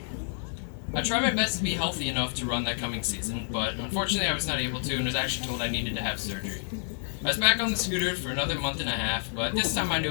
I tried my best to be healthy enough to run that coming season, but unfortunately I was not able to and was actually told I needed to have surgery. I was back on the scooter for another month and a half, but this time I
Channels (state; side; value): silent; right; 59 dB below the other